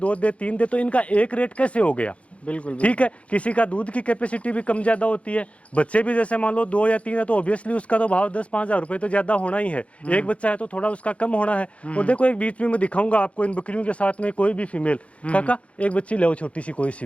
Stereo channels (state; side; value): late; right; 0.063 ms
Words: दे, 3 दे, तो इनका एक रेट कैसे हो गया? बिल्कुल ठीक है। किसी का दूध की कैपेसिटी भी कम ज्यादा होती है, बच्चे भी जैसे मान लो 2 या 3 है तो ऑब्वियसली उसका तो भाव 10-5 हज़ार रुपए तो ज्यादा होना ही है। एक बच्चा है तो थोड़ा उसका कम होना है। और देखो एक बीच में मैं दिखाऊंगा आपको इन बकरियों के साथ में कोई भी फीमेल, काका एक बच्ची ले छोटी सी कोई सी